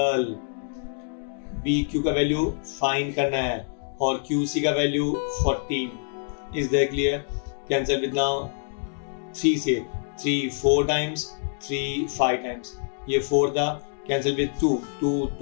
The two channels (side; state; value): right; silent; digital silence